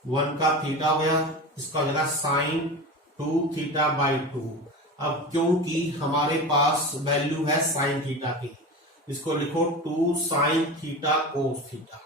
1 का थीटा हो गया, इसका हो जाएगा साइन 2 थीटा बाई 2। अब क्योंकि हमारे पास वैल्यू है साइन थीटा की, इसको लिखो 2 sine theta cos theta.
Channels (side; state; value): both; normal; correlation 0.29